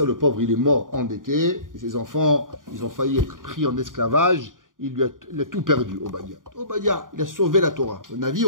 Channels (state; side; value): late; left; 0.89 ms